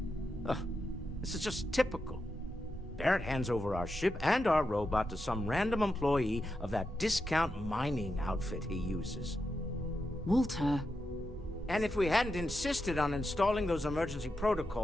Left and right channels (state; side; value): normal; both; correlation 0.87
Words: This is just typical. Barrett hands over our ship and our robot to some random employee of that discount mining outfit he uses. Walter. And if we hadn't insisted on installing those emergency